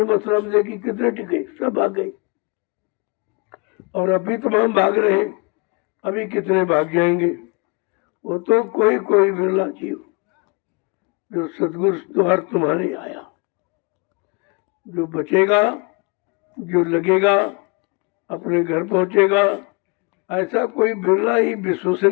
मथुरा में देखी, कितने टिके, सब भाग गए। और अभी तमाम भाग रहे हैं, अभी कितने भाग जाएंगे। वो तो कोई कोई बिरला जीव जो सदगुरु द्वार तुम्हारे आया, जो बचेगा, जो लगेगा, अपने घर पहुंचेगा। ऐसा कोई बिरला ही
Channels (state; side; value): quieter; right; 30.4 dB